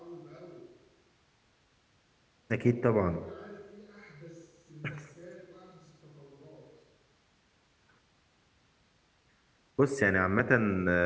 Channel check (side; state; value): both; identical; correlation 1.00